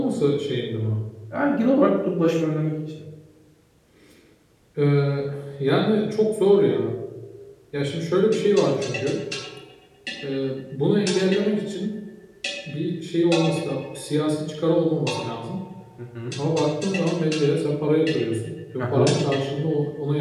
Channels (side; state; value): both; identical; correlation 1.00